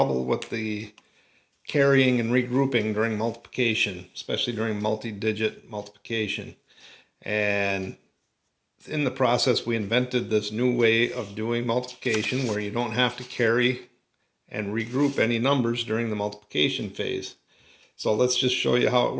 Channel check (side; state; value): both; identical; correlation 1.00